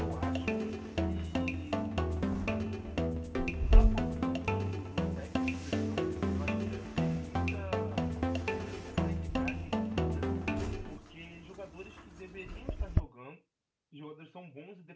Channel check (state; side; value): identical; both; correlation 1.00